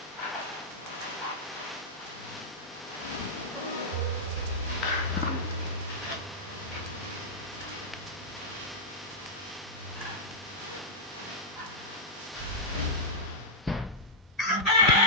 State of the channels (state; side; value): normal; both; correlation -0.08